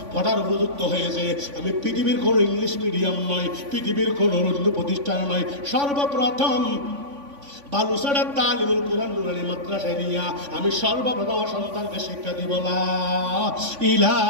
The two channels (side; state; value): left; late; 3.5 ms